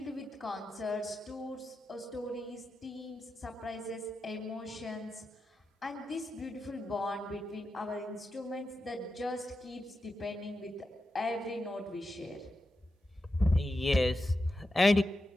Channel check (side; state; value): both; normal; correlation 0.89